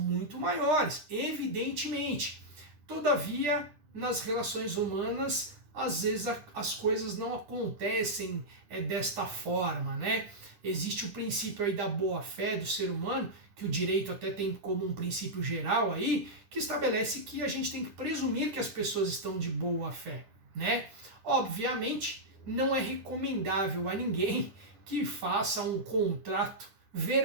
maiores, evidentemente. Todavia, nas relações humanas, às vezes as coisas não acontecem desta forma, né? Existe o princípio aí da boa-fé do ser humano, que o direito até tem como um princípio geral aí, que estabelece que a gente tem que presumir que as pessoas estão de boa-fé, né? Obviamente, não é recomendável a ninguém que faça um contrato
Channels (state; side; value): late; left; 9.9 ms